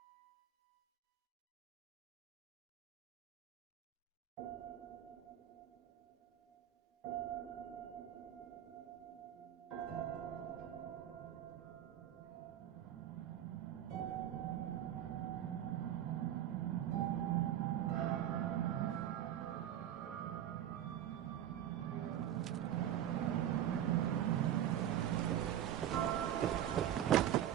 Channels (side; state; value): left; quieter; 11.1 dB